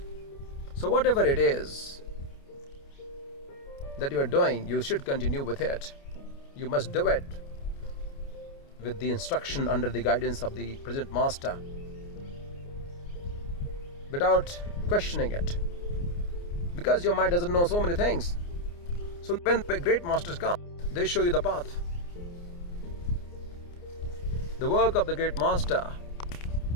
So whatever it is that you are doing, you should continue with it. You must do it with the instruction under the guidance of the present master, without questioning it, because your mind doesn't know so many things. So when the great masters come, they show you the path. The work of the great master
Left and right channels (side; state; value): right; late; 29 ms